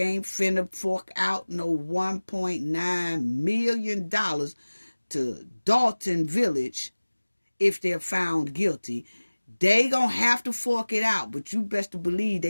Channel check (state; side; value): inverted; both; correlation -1.00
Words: finna fork out no $1.9 million to Dalton Village if they're found guilty. They gonna have to fork it out, but you best to believe